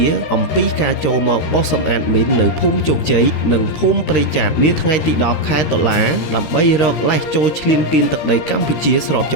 អំពីការចូលមកបោះសម្អាតមីននៅភូមិជោគជ័យនិងភូមិព្រៃច័ន្ទនាថ្ងៃទី10 ខែតុលាដើម្បីរកលេសចូលឈ្លានពានទឹកដីកម្ពុជាស្របច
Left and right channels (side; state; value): right; late; 13 ms